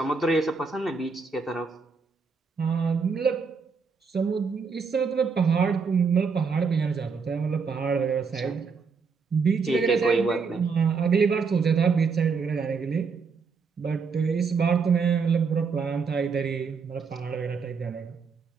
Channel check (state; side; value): quieter; left; 5.2 dB